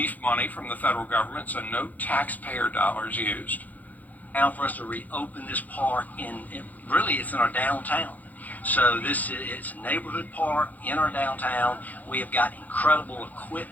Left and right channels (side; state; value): right; late; 0.080 ms